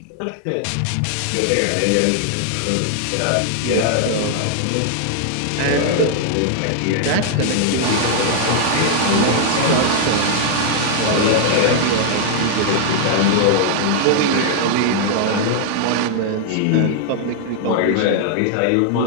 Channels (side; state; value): both; different; correlation 0.00